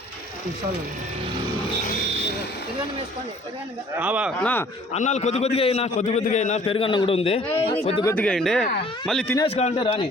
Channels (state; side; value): normal; both; correlation 0.54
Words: అన్నాలు కొద్దిగా అయినా పెరుగన్నం కూడా ఉంది, కొద్దిగా వేయండి. మళ్ళీ తినేసి కావాలంటే రాని